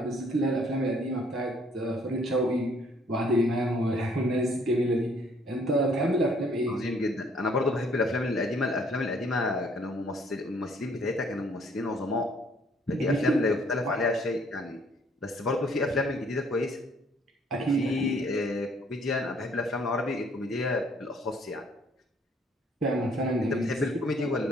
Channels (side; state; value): both; normal; correlation 0.62